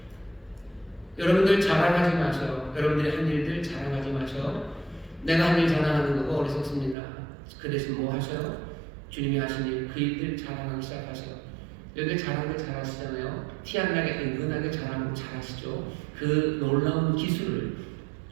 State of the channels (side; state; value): left; drops out; at 7.0 s